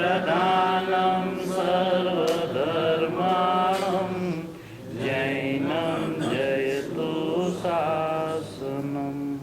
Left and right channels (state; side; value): identical; both; correlation 1.00